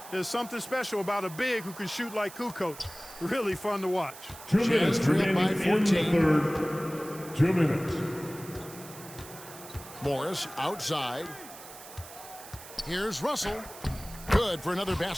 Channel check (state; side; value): noise; right; hiss, 16 dB below the sound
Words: There's something special about a big who can shoot like Kukoc. Really fun to watch. 2 Jazz minutes trail remaining by in the 14. 3rd. 2 minutes. Morris outside. Here's Russell. Good for another